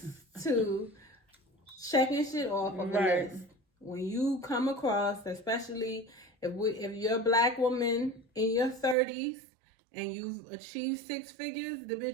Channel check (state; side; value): drops out; left; at 9.0 s